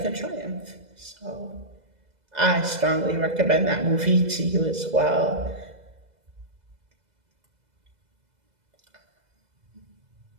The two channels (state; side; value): late; left; 2.0 ms